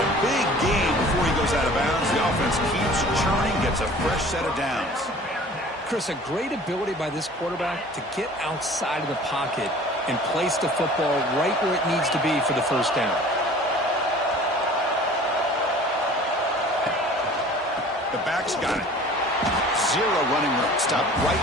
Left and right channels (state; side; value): normal; both; correlation 0.46